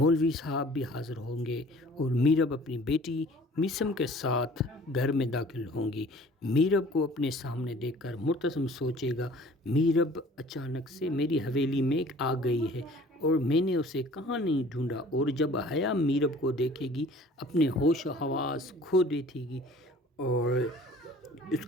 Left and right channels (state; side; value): normal; both; correlation 0.50